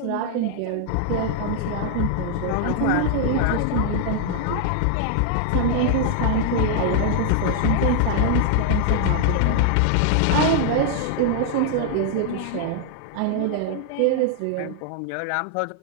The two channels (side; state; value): both; different; correlation 0.00